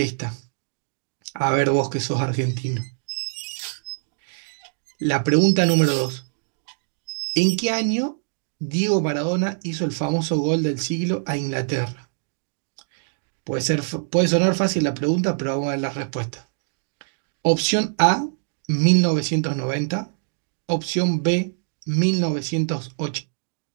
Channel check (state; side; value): silent; left; digital silence